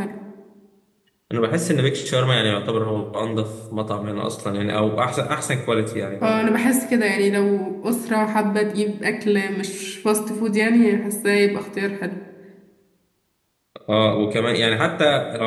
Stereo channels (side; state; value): both; identical; correlation 1.00